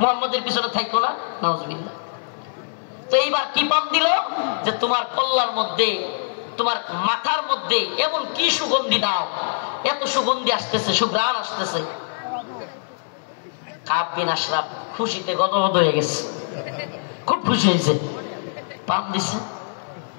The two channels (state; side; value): silent; right; digital silence